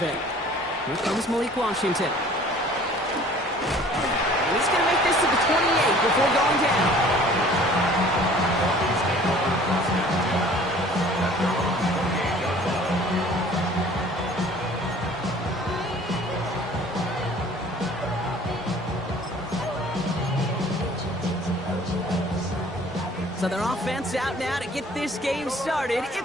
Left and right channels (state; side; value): normal; both; correlation 0.51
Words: Here comes Malik Washington. He's going to make this to the 28 before going down. So their offense out now to get this game started.